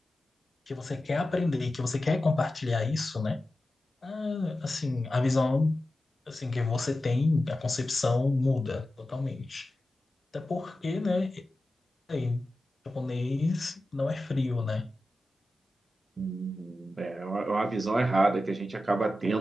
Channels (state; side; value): normal; both; correlation 0.93